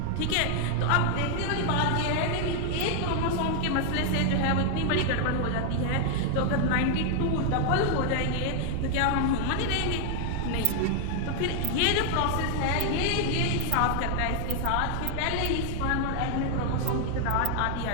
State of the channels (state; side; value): different; both; correlation 0.00